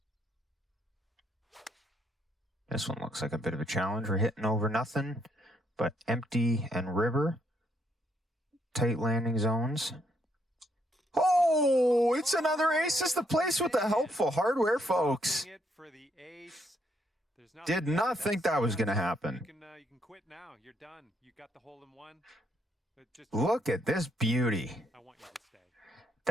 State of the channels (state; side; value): normal; both; correlation 0.73